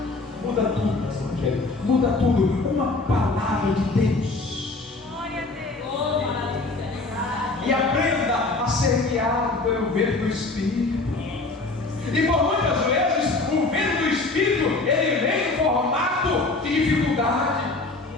Muda tudo, pastor Rogério. Muda tudo. Uma palavra de Deus. Glória a Deus. E aprenda a ser guiado pelo vento do Espírito. E por muitas vezes o vento do Espírito, ele vem em formato de dificuldade.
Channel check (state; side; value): quieter; right; 3.4 dB